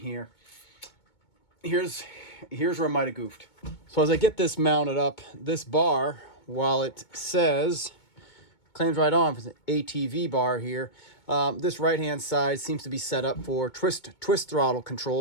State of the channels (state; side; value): late; right; 2.2 ms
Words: Here's where I might have goofed. So as I get this mounted up, this bar, while it says, claims right on for the ATV bar here, this right-hand side seems to be set up for twist throttle